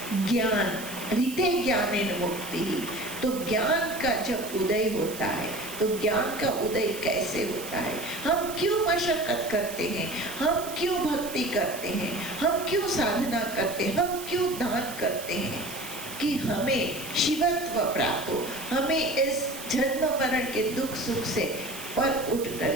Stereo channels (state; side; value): noise; right; hiss, 11 dB below the sound